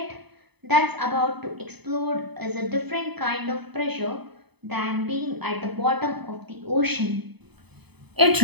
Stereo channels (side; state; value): left; late; 0.98 ms